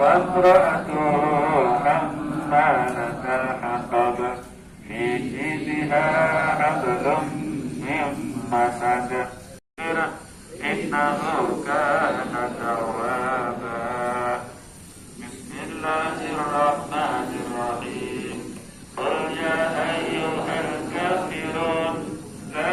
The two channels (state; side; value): identical; both; correlation 1.00